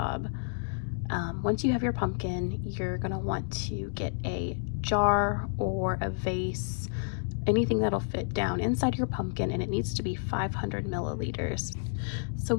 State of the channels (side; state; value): right; silent; digital silence